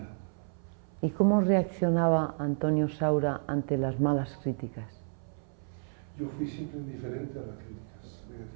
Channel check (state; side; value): silent; left; 57 dB below the other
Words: también. ¿Y cómo reaccionaba Antonio Saura ante las malas críticas? Yo fui siempre indiferente a las críticas